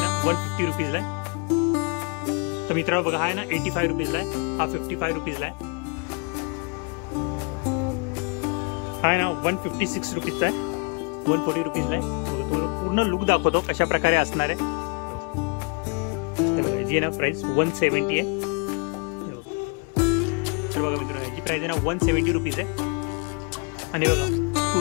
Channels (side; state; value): right; quieter; 34.6 dB